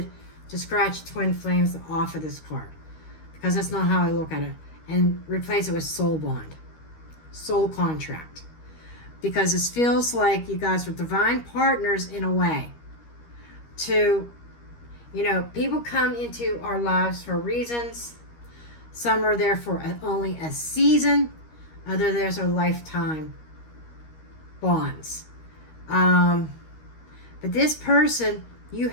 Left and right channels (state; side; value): late; right; 13 ms